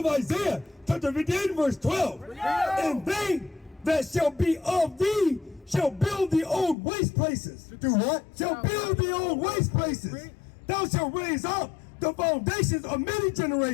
Isaiah, chapter 58, verse 12. And they that shall be of thee shall build the old waste places. Do what? Shall build the old waste places. Thou shalt raise up the foundations of many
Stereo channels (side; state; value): right; drops out; at 6.8 s